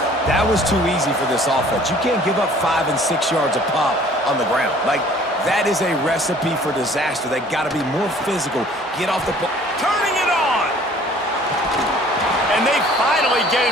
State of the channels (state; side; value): normal; both; correlation 0.53